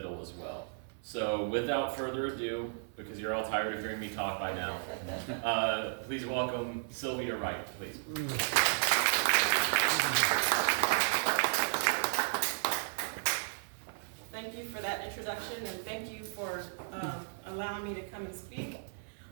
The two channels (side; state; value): left; silent; 55 dB below the other